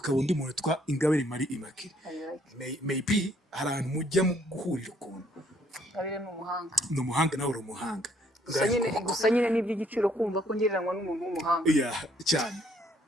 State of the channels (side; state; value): both; normal; correlation 0.66